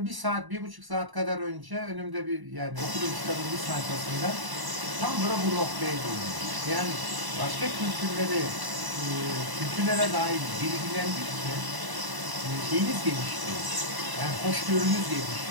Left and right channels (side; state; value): left; late; 1.0 ms